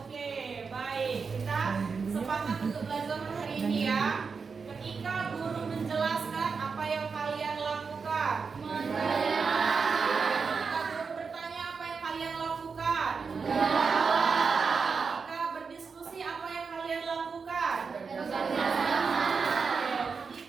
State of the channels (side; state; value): left; quieter; 5.2 dB